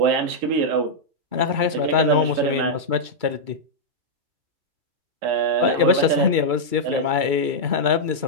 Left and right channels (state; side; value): late; left; 2.3 ms